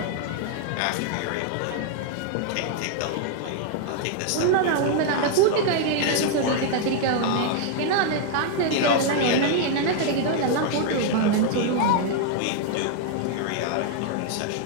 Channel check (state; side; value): different; both; correlation 0.00